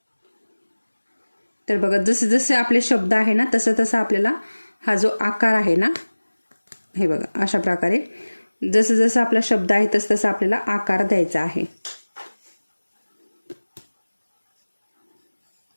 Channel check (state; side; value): inverted; both; correlation -1.00